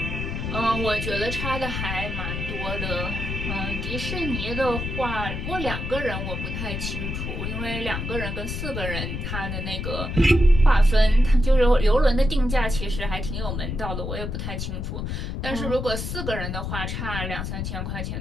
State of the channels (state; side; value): noise; left; rumble, 4 dB below the sound